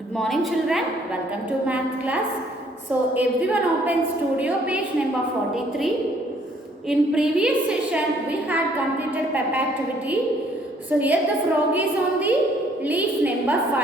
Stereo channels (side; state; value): both; normal; correlation 0.63